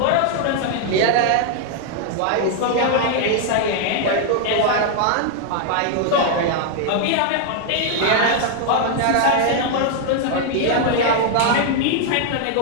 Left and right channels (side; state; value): both; different; correlation 0.00